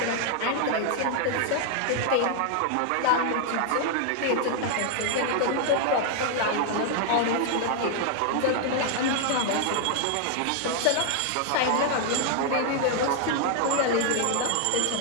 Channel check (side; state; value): both; different; correlation 0.00